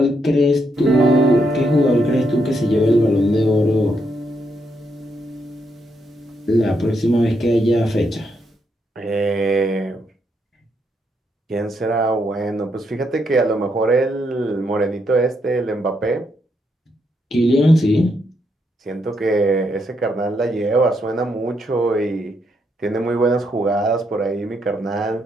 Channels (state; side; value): normal; both; correlation 0.78